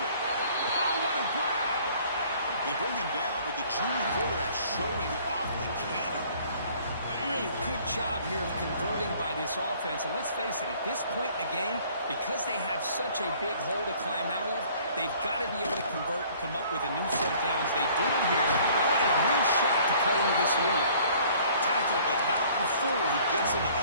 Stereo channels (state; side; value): inverted; both; correlation -0.55